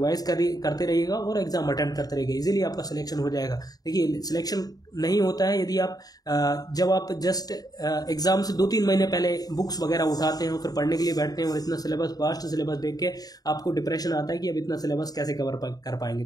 करते रहिएगा और एग्जाम अटेम्प्ट करते रहिएगा। इजीली आपका सिलेक्शन हो जाएगा। देखिए सिलेक्शन नहीं होता है यदि आप जब आप जस्ट एग्जाम से 2-3 महीने पहले बुक्स वगैरह उठाते हैं और फिर पढ़ने के लिए बैठते हैं और इतना सिलेबस, वास्ट सिलेबस देख के आपको डिप्रेशन आता है कि अब इतना सिलेबस कैसे कवर कर पाएंगे।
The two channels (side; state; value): right; late; 0.18 ms